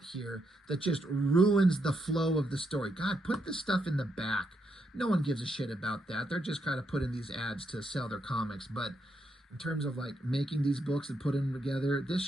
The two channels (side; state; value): both; normal; correlation 0.80